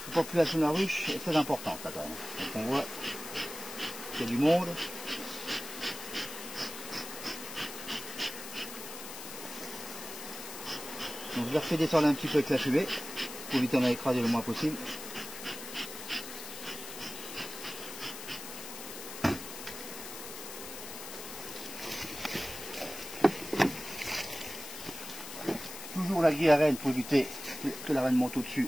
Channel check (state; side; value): noise; left; hiss, 10 dB below the sound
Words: La population de la ruche est très importante là quand même. Donc on voit qu'il y a du monde. Donc je la refais descendre un petit peu avec la fumée pour éviter d'en écraser le moins possible. Toujours la grille à reine pour éviter que la reine monte au-dessus